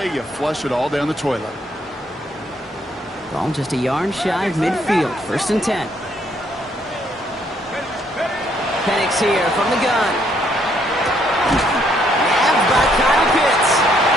you flush it all down the toilet. Ball just a yard shy of midfield. 1st and 10. Penix here from the gun. Nabbed by Kyle Pitts.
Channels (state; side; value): normal; both; correlation 0.70